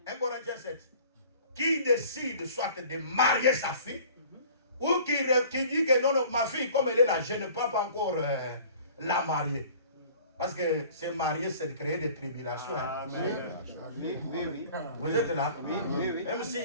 1 Corinthiens 7. Qui décide soit de marier sa fille, ou qui dit que non, ma fille, comme elle est là, je ne peux pas encore la marier. Parce que se marier, c'est de créer des tribulations. Oui. Vous êtes là? Oui. Même s'il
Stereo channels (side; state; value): both; inverted; correlation -0.48